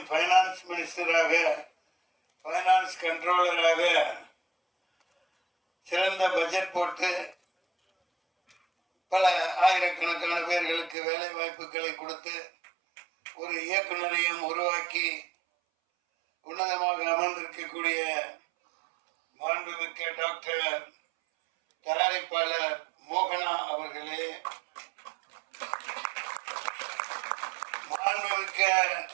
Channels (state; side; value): drops out; left; at 11.0 s